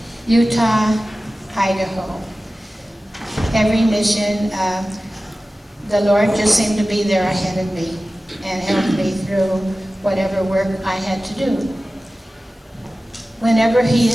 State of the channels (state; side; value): normal; both; correlation 0.96